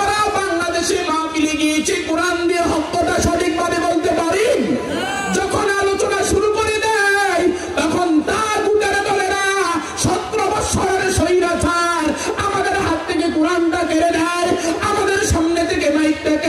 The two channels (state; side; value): identical; both; correlation 1.00